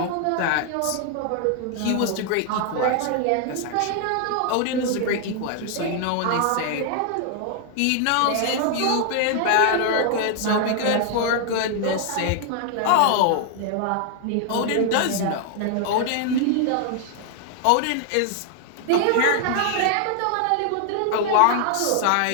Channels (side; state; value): both; different; correlation 0.00